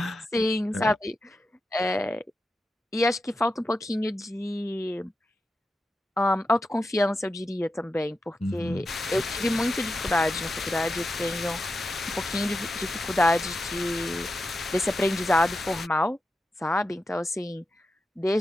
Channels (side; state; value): both; normal; correlation 0.89